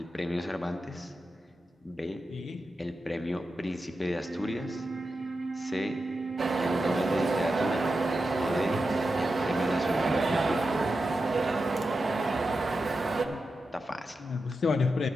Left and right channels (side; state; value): both; normal; correlation 0.90